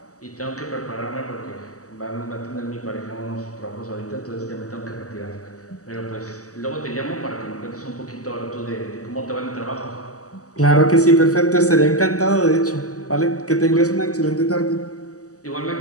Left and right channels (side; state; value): right; late; 0.66 ms